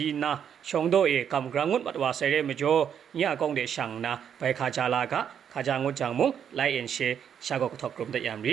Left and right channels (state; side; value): quieter; left; 8.4 dB